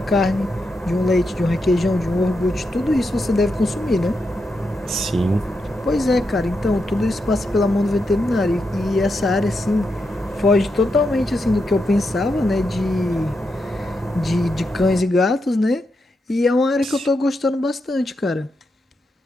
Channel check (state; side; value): normal; both; correlation 0.85